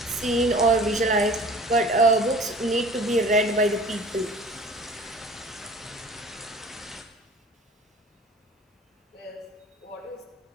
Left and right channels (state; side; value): normal; both; correlation 0.45